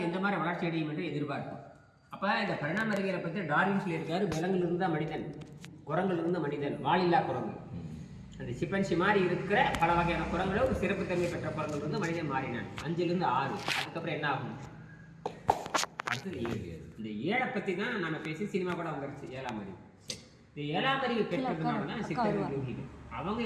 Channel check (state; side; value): identical; both; correlation 1.00